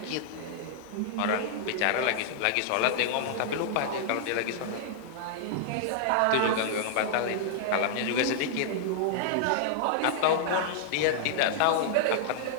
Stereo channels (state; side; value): different; both; correlation -0.01